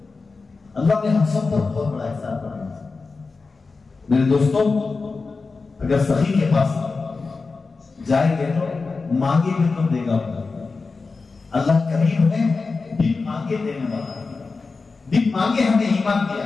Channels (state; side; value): quieter; right; 4.2 dB